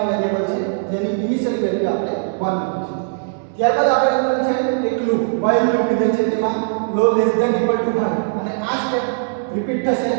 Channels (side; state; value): left; silent; digital silence